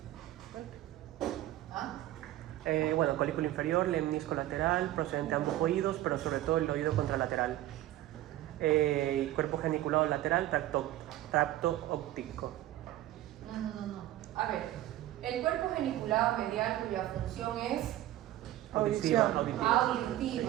¿Ah? Bueno, colículo inferior, lemnisco lateral, procedente de ambos oídos, pero sobre todo el oído contralateral. Cuerpo geniculado lateral, tracto óptico. No. A ver, el cuerpo geniculado medial cuya función es Auditiva.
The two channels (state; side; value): quieter; left; 14.6 dB